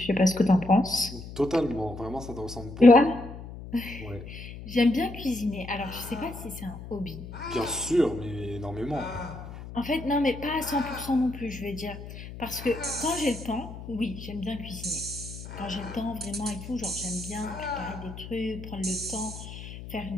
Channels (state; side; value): noise; left; hum, 12 dB below the sound